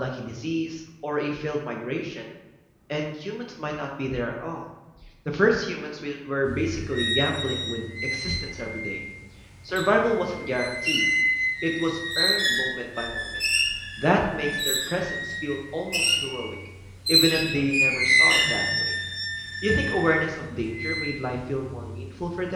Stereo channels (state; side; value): identical; both; correlation 1.00